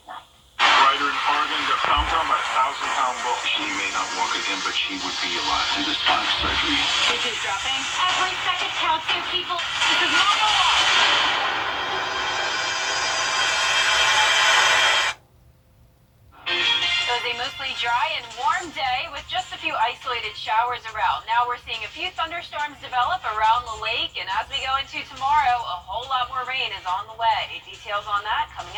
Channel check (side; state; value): both; identical; correlation 1.00